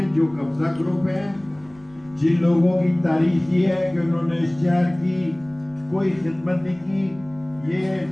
جو قبضہ گروپ ہیں، جن لوگوں کی تاریخ یہ ہے کہ انہوں نے اس شہر کی کوئی خدمت نہیں کی.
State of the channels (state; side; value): noise; right; rumble, 28 dB below the sound